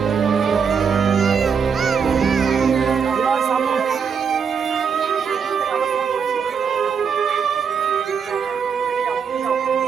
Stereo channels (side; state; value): left; quieter; 6.5 dB